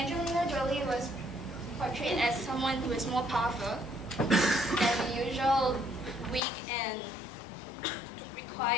Jolie was portrayed as someone who is more powerful than the usual weak and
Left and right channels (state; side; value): drops out; right; at 6.4 s